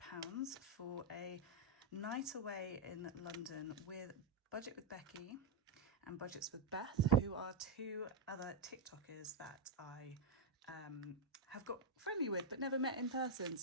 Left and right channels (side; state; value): left; quieter; 3.1 dB